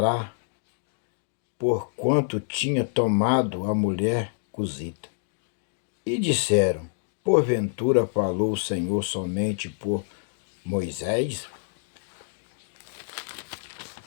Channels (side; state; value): right; silent; digital silence